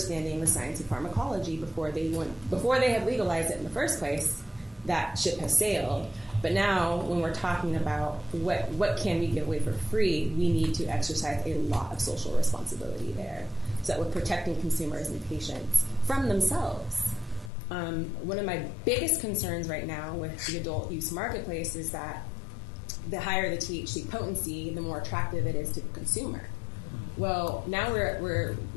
the science of pharmacology before they have legalized it in the first place. That ship has sailed. But now, when we're talking about what can we give away for free, we need to exercise a lot of social responsibility there, so that we're protecting consumers and patients from themselves. One of my biggest concerns right now with the adult use marketplace is that the higher the THC potency, the more attractive it is to the consumer. Well, now we're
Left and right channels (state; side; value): drops out; right; at 17.5 s